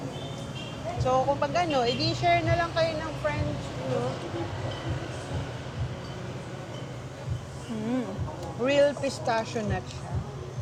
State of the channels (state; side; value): identical; both; correlation 1.00